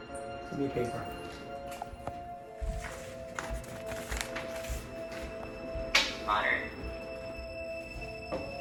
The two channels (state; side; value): identical; both; correlation 1.00